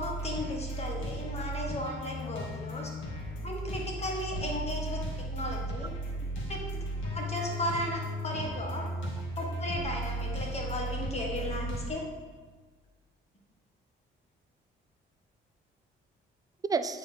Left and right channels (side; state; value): both; normal; correlation 0.40